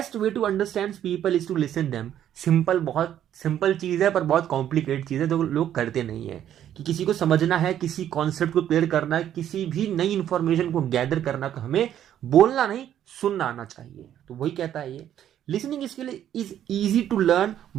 way to understand people is to listen them. Simple, बहुत सिंपल चीज है पर बहुत कॉम्प्लिकेट चीज है जो लोग करते नहीं है। कि किसी को समझना है, किसी कॉन्सेप्ट को क्लियर करना है, किसी भी नई इंफॉर्मेशन को गैदर करना, तो हमें बोलना नहीं सुनना आना चाहिए। तो वही कहता है ये, listening skill is easy to learn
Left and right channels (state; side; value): quieter; left; 10.7 dB